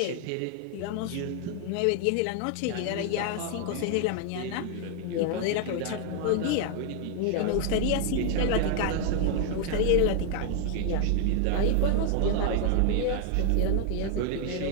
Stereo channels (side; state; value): both; different; correlation 0.00